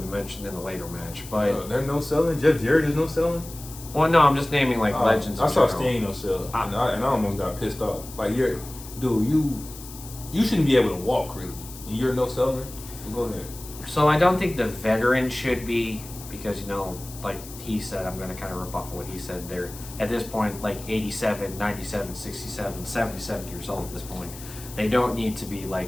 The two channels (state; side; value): noise; left; hiss, 15 dB below the sound